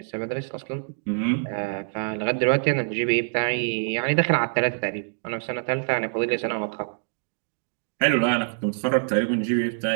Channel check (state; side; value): silent; left; digital silence